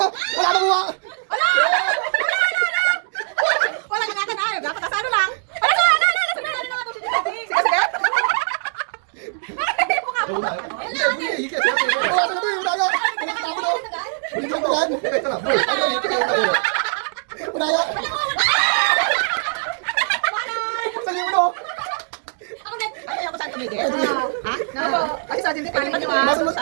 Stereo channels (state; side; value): silent; left; 64 dB below the other